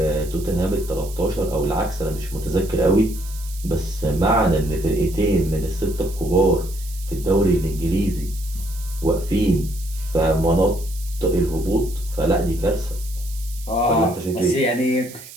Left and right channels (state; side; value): noise; right; hiss, 16 dB below the sound